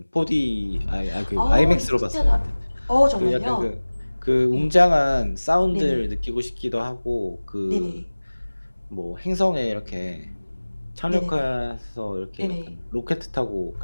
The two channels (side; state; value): both; inverted; correlation -1.00